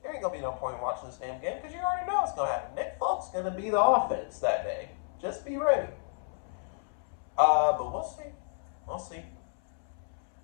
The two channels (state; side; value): silent; right; 57 dB below the other